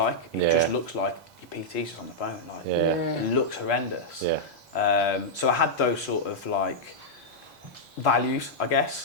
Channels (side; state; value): both; normal; correlation -0.06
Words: It just looks like your PT's just on the phone. Like it looks horrendous. So I had those sort of like values, I